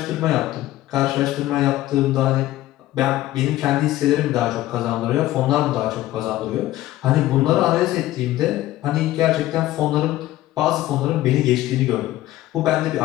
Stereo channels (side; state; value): right; quieter; 15.4 dB